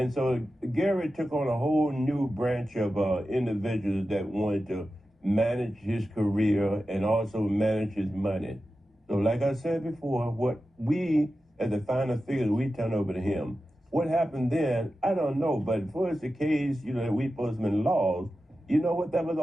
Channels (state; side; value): normal; both; correlation 0.92